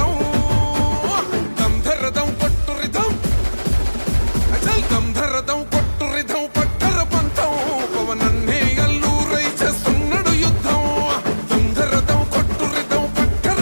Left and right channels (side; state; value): both; inverted; correlation -1.00